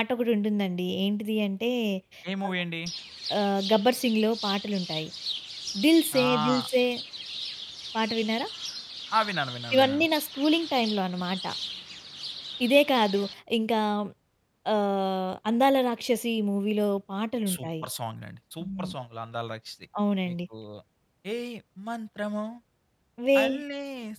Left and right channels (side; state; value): both; identical; correlation 1.00